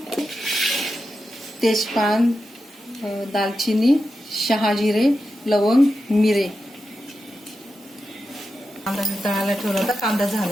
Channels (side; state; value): both; normal; correlation 0.90